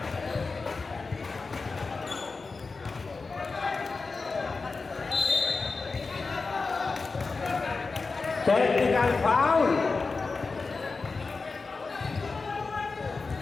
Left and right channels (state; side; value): quieter; right; 4.2 dB